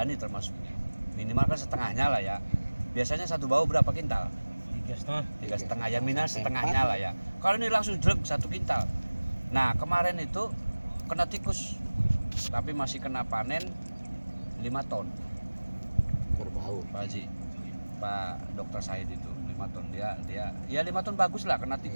termasuknya. Minimal kan setengahnya lah ya. Biasanya satu bau berapa kintal? 3,5 ya, minus setengahnya lah ya. Kalau ini langsung jelek 1 kintal. Nah, kemarin itu kena tikus, tapi masih kena panen 5 ton. Berbau. Pak Haji, Pak Dokter Syahid itu 5 ton, dia ya 5 ton bagus lah, kena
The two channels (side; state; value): both; inverted; correlation -1.00